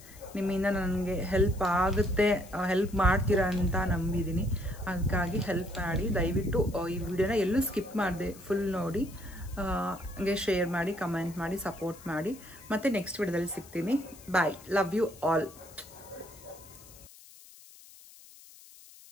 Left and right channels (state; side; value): noise; left; hiss, 21 dB below the sound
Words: ನಿಮ್ಮಿಂದ ನನಗೆ ಹೆಲ್ಪ್ ಆಗುತ್ತೆ, ಹೆಲ್ಪ್ ಮಾಡ್ತೀರಾ ಅಂತ ನಂಬಿದ್ದೀನಿ. ಅದಕ್ಕಾಗಿ ಹೆಲ್ಪ್ ಮಾಡಿ. ದಯವಿಟ್ಟು ಈ ವಿಡಿಯೋನ ಎಲ್ಲೂ ಸ್ಕಿಪ್ ಮಾಡಿದೆ, ಫುಲ್ ನೋಡಿ, ಹಂಗೆ ಶೇರ್ ಮಾಡಿ, ಕಮೆಂಟ್ ಮಾಡಿ, ಸಪೋರ್ಟ್ ಮಾಡಿ. ಮತ್ತು ನೆಕ್ಸ್ಟ್ ವಿಡಿಯೋದಲ್ಲಿ ಸಿಗ್ತೀನಿ. ಬಾಯ್, ಲವ್ ಯು ಆಲ್.